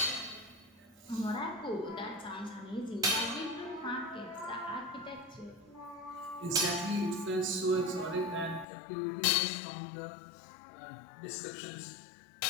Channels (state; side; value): drops out; right; at 8.7 s